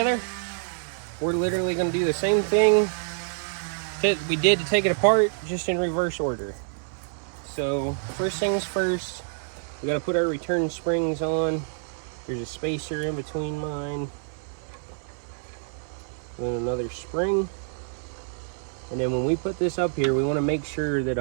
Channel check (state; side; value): silent; left; 60 dB below the other